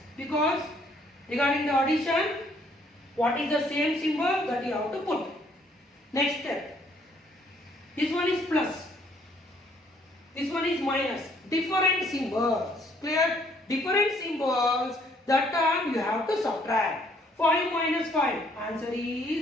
Because regarding the addition, what is the same symbol that you have to put? Next step. This one is plus. This one is minus. Different symbols. Clear? Different symbols. That time you have to subtract. 5 minus 5. Answer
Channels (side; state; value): both; normal; correlation 0.64